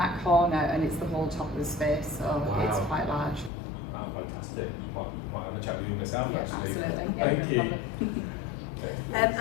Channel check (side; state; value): right; drops out; at 3.5 s